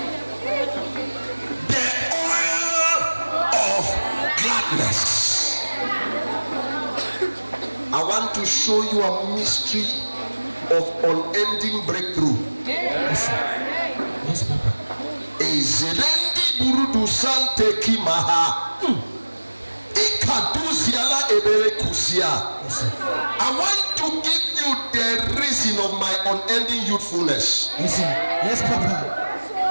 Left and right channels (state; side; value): inverted; both; correlation -1.00